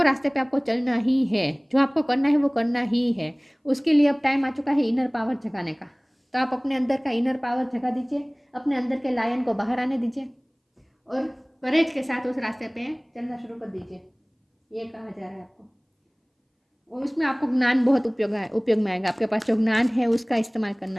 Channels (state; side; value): identical; both; correlation 1.00